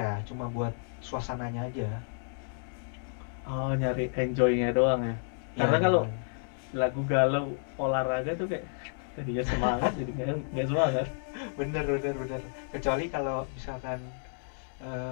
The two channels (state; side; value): silent; right; digital silence